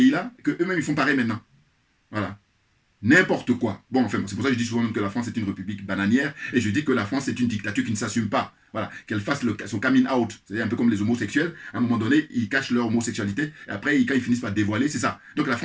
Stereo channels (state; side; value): identical; both; correlation 1.00